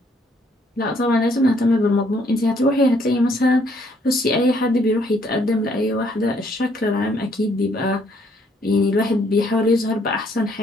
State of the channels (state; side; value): normal; both; correlation 0.67